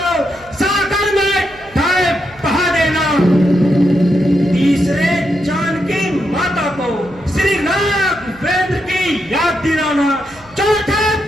सागर में बहा देना, तीसरे जानकी माता को श्री राघवेंद्र की याद दिलाना, चौथे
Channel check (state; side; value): noise; right; hum, 25 dB below the sound